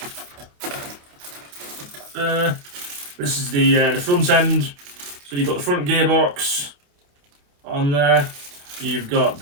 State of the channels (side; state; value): left; late; 28 ms